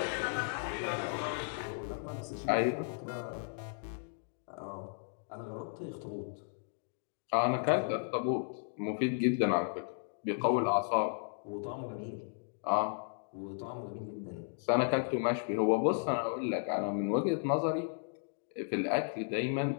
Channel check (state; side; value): silent; right; digital silence